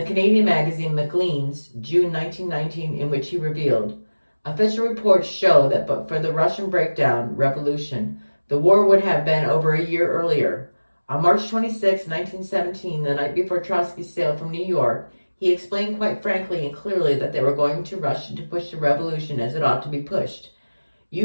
Canadian magazine Maclean's, June 1919, in which he revealed, "Official reports show that but for the Russian revolution, the war would have been over a year earlier. On March 26, 1917, the night before Trotsky sailed from New York, he explained quite frankly and clearly that they were going to Russia to push the revolution as it ought to be pushed.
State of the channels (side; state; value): both; inverted; correlation -1.00